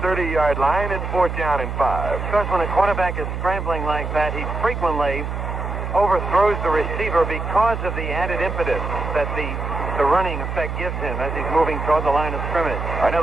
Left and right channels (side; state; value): right; noise; hum, 4 dB below the sound